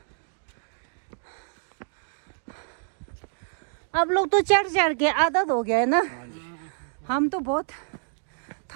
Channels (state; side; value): silent; left; 60 dB below the other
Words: अब लोग तो चढ़ चढ़ के आदत हो गया है ना हम तो बहुत